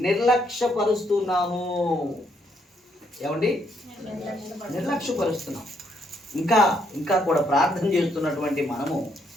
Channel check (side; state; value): both; normal; correlation 0.73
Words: నిర్లక్ష్యపరుస్తున్నాము. ఏమండి? నిర్లక్ష్యపరుస్తున్నాం. ఇంకా కూడా ప్రార్థన చేస్తున్నటువంటి మనము